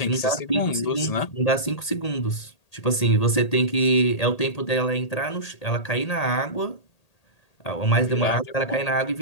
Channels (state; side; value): late; right; 1.8 ms